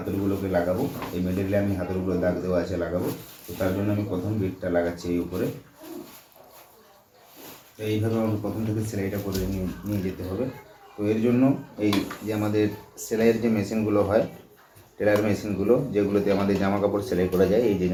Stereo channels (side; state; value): both; identical; correlation 1.00